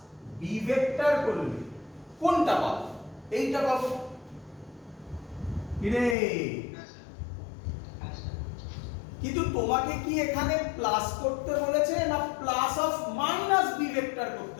B vector করলে কোনটা পাবো? এইটা পাবো। কিরে, কিন্তু তোমাকে কি এখানে প্লাস করতে বলেছে না plus of minus B vector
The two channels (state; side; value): drops out; right; at 6.2 s